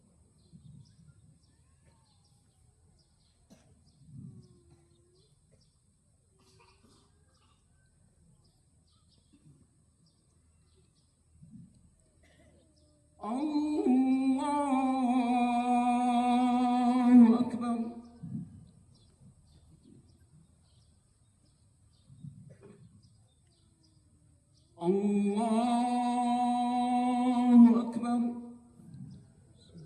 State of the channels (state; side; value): identical; both; correlation 1.00